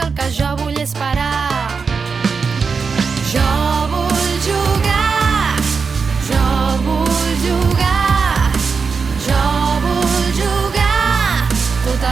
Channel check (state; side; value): quieter; left; 5.2 dB